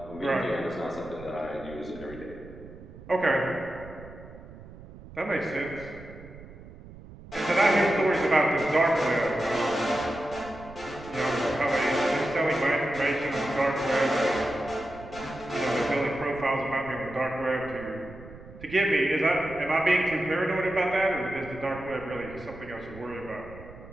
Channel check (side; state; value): right; noise; rumble, 17 dB below the sound